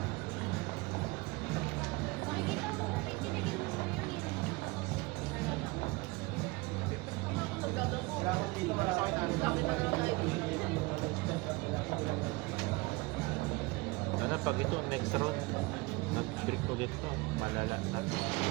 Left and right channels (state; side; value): quieter; left; 23.7 dB